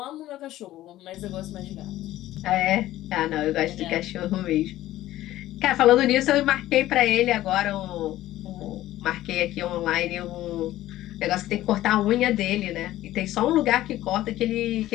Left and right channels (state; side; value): quieter; right; 14.8 dB